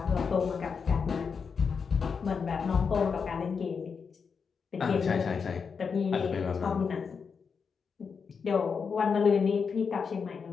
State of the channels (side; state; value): right; quieter; 5.8 dB